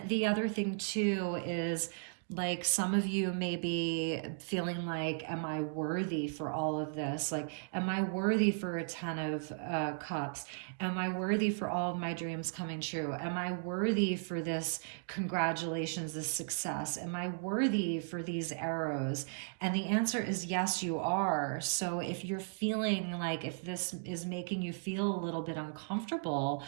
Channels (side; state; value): left; silent; digital silence